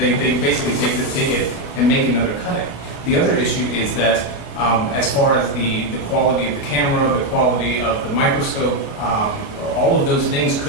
basically take it and make another cutting. The other issue is that as far as the quality of the camera, the quality of the microscope, all of those things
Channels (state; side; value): late; right; 29 ms